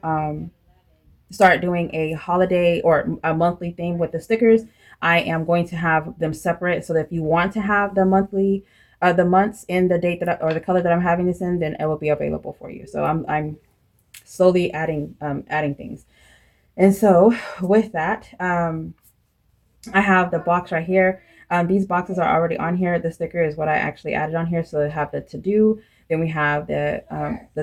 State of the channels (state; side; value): identical; both; correlation 1.00